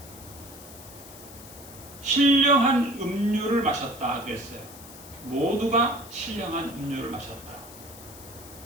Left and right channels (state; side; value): noise; left; hiss, 17 dB below the sound